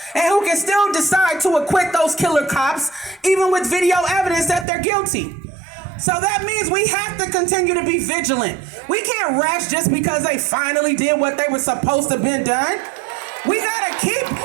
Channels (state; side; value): drops out; left; at 4.7 s